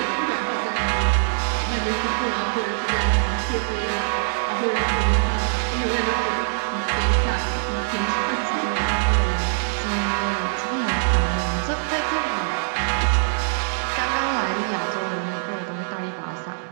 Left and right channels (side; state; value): left; silent; digital silence